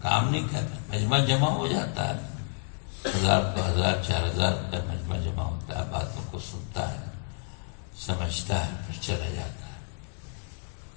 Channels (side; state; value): right; silent; 58 dB below the other